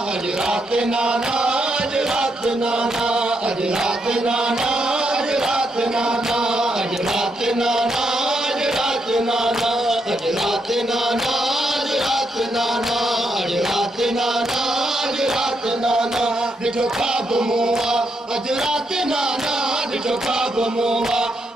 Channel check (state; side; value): normal; both; correlation 0.79